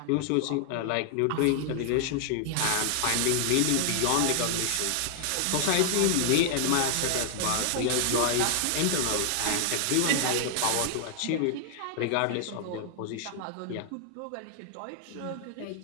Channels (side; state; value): both; different; correlation 0.00